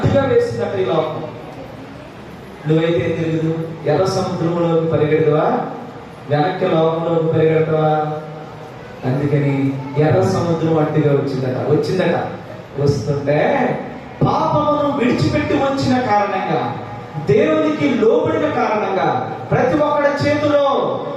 వేసిందట ఈ లోకం. నువ్వైతే ఏం తెలియదు? ఎర్ర సముద్రంలోకి పరిగెడతావా? వెనక్కి లోకంలోకి పరిగెడతావా? అందుకని ఎర్ర సముద్రం అడ్డుగా వచ్చిందట. వస్తుంటే పాపమును విడిచిపెట్టి వచ్చిన కారణంగా, దేవునికి లోబడిన కారణంగా, ప్రతి ఒక్కడి చేతిలో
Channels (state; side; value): identical; both; correlation 1.00